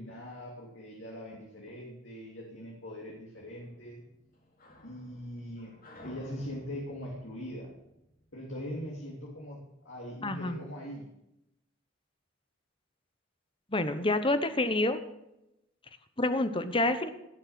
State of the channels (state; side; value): normal; both; correlation 0.38